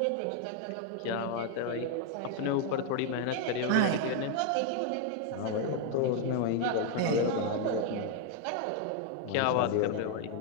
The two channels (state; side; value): different; both; correlation 0.01